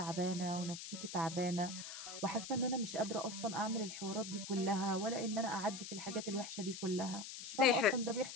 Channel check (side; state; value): left; noise; hiss, 9 dB below the sound